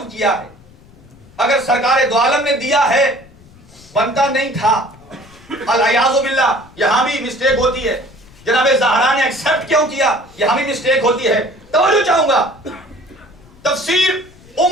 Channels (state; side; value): noise; left; rumble, 25 dB below the sound